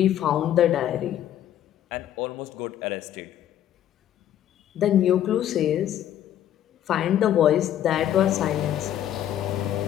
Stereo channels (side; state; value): right; quieter; 11.2 dB